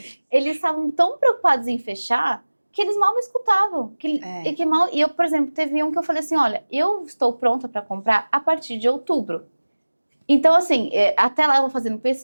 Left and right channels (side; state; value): both; inverted; correlation -1.00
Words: Eles estavam tão preocupados em fechar que eles mal me escutavam. E eu, por exemplo, teve um que eu falei assim, olha, eu estou pronta para comprar a partir de outubro. Então, assim, até lá eu vou fazendo